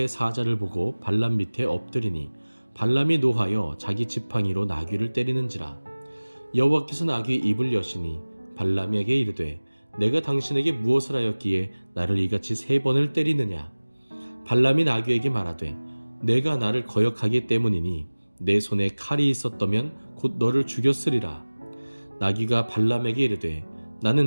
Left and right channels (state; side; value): inverted; both; correlation -1.00